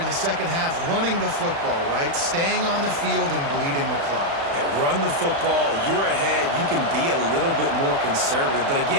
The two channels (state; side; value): late; left; 36 ms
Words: the second half, running the football, right? Staying on the field and bleeding the clock. Yeah, run the football. You're ahead. You can be a little bit more conservative. But